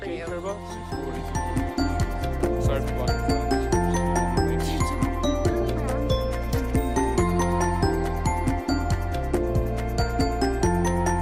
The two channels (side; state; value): both; identical; correlation 1.00